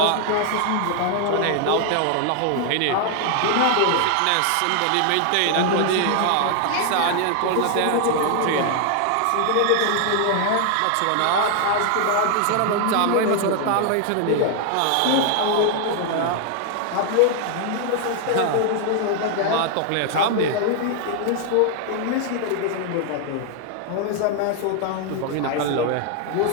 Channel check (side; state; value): both; different; correlation 0.00